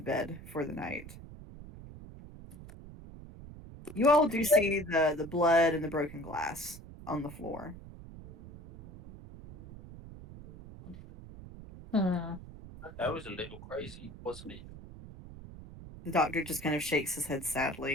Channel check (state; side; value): noise; right; rumble, 15 dB below the sound